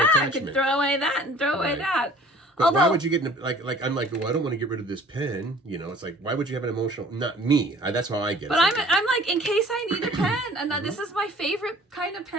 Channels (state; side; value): normal; both; correlation 0.50